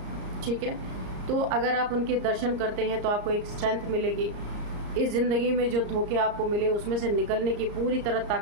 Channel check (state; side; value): late; left; 34 ms